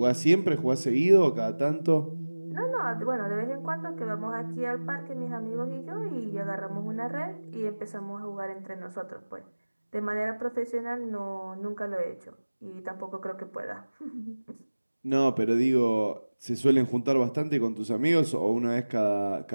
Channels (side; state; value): both; inverted; correlation -1.00